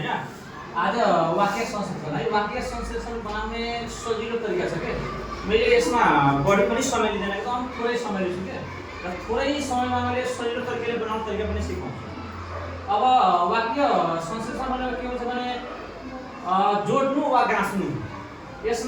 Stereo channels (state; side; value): identical; both; correlation 1.00